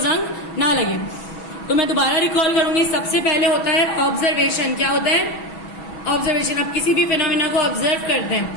ना लगे। तो मैं दोबारा रिकॉल करूंगी, सबसे पहले होता है ऑब्जर्वेशन। क्या होता है, ऑब्जर्वेशन। आप किसी भी फिनोमिना को ऑब्जर्व करते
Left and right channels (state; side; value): late; right; 6.2 ms